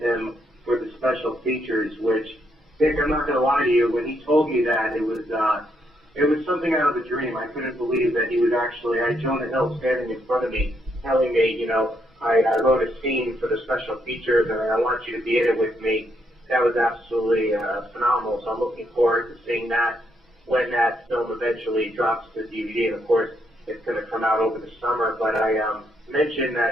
him for the special features, which, Nick, I'm not going to lie to you, when he told me that, it was something out of a dream. I couldn't believe that he was actually, I had Jonah Hill standing in front of me, telling me, I wrote a scene for the special features, and I want you to be in it with me. That was absolutely phenomenal, so I'm looking forward to seeing that when that film eventually drops to DVD, and of course, it's going to come out over the summer. But I mentioned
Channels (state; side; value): normal; both; correlation 0.76